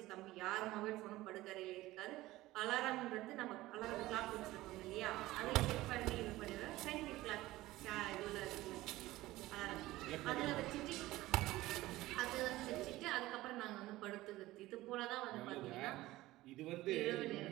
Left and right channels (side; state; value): left; quieter; 17.5 dB